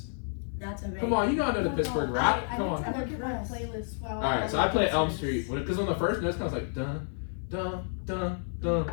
That's amazing. Come on, you know I know the Pittsburgh rap. I Come need to on. look at my playlist while Alright, so I play Elm Street because on the first note it sounds like dun dun dun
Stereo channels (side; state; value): right; silent; 55 dB below the other